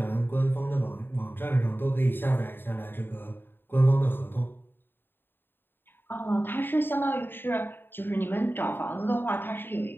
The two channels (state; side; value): late; right; 0.097 ms